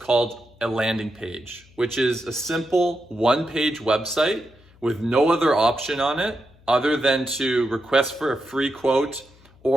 a landing page, which is a simple one-page website with no other option on it other than to request for a free quote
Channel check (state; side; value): noise; left; hum, 27 dB below the sound